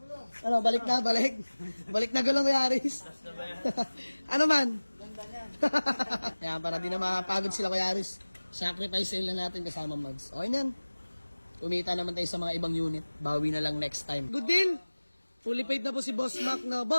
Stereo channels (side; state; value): both; inverted; correlation -1.00